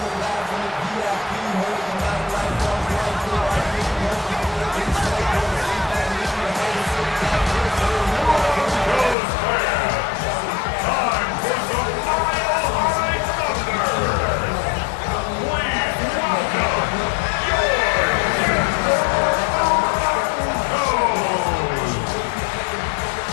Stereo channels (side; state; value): right; drops out; at 9.2 s